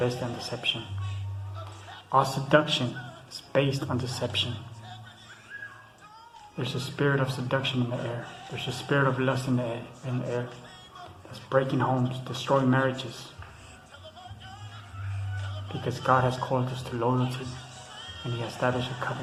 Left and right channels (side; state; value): both; identical; correlation 1.00